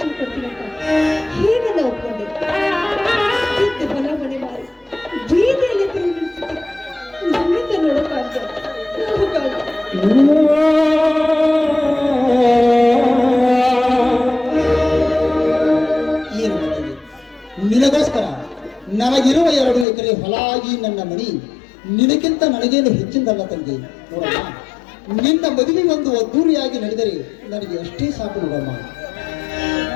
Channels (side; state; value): right; drops out; at 19.9 s